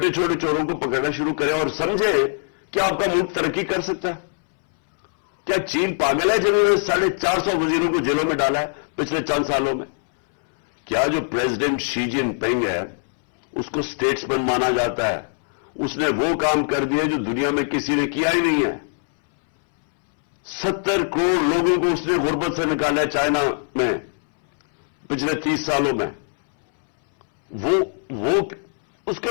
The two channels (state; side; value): silent; right; 64 dB below the other